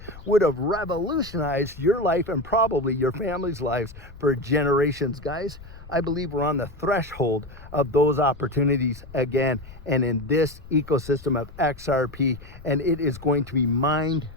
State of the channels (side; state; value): left; noise; rumble, 18 dB below the sound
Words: would have revolutionized your life and probably your family's lives for generations. Guys, I believe we're on the threshold of those opportunities again, and in this ecosystem of XRP, and it is going to be